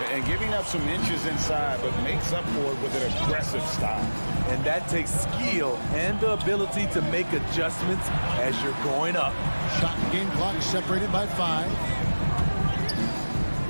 And giving up some inches inside, but makes up for it with an aggressive style. And that takes skill and the ability to make adjustments as you're going up. Shot and game clock separated by 5.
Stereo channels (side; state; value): both; inverted; correlation -1.00